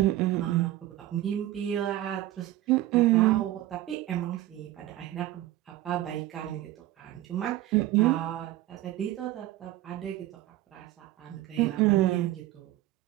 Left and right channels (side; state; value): left; quieter; 15.1 dB